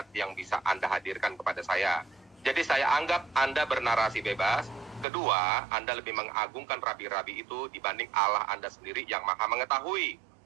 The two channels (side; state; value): left; drops out; at 5.1 s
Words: yang bisa Anda hadirkan kepada saya. Jadi saya anggap Anda bernarasi bebas. Kedua, Anda lebih mengagungkan rabi-rabi itu dibanding Allah Anda sendiri yang maha mengetahui.